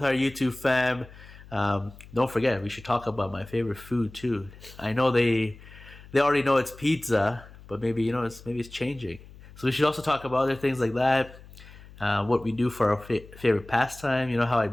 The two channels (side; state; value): left; noise; hum, 20 dB below the sound